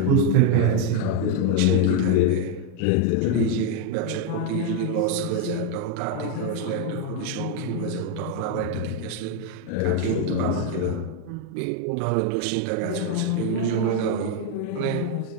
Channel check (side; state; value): both; different; correlation 0.01